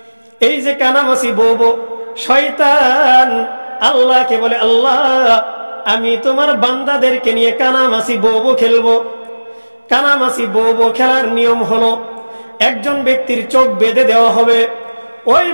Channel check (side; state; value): both; inverted; correlation -1.00